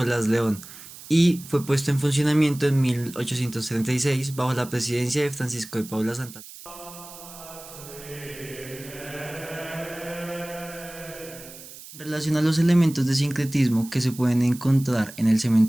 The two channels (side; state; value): right; noise; hiss, 16 dB below the sound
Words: León y fue puesto en funcionamiento en 1836 bajo la presidencia de Francisco de Paula Santa. En relación a los elementos de sincretismo que se pueden encontrar en el